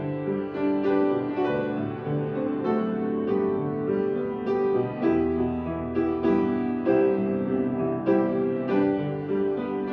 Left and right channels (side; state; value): both; identical; correlation 1.00